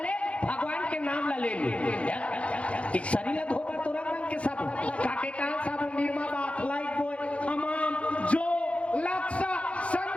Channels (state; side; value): late; right; 0.062 ms